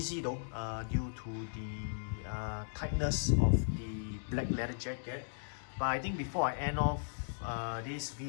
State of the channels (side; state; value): right; silent; digital silence